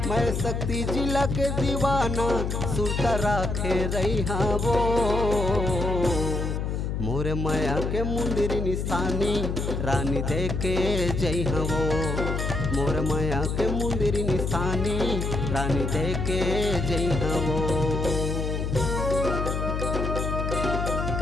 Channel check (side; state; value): left; noise; hum, 1 dB below the sound